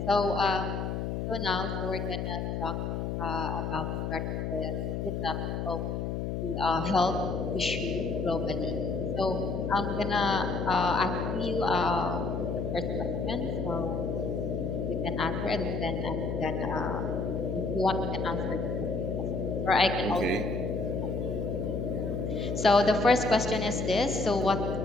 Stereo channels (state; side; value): noise; left; hum, 2 dB below the sound